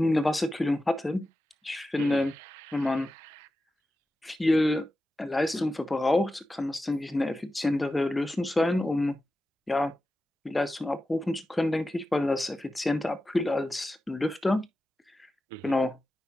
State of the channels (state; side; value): normal; both; correlation 0.93